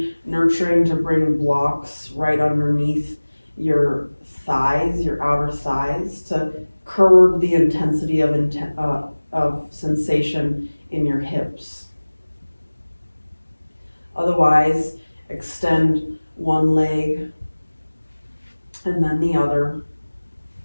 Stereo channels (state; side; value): inverted; both; correlation -1.00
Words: nurturing to bring blocks right underneath your thighs, your outer thighs, to curb the intensity of sensation in your hips. Otherwise, extend one leg and then the other,